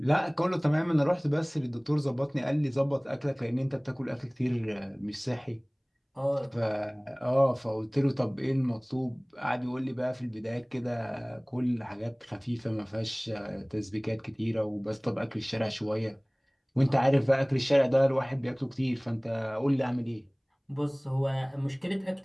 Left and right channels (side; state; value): both; identical; correlation 1.00